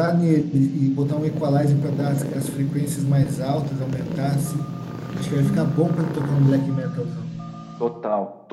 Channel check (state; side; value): identical; both; correlation 1.00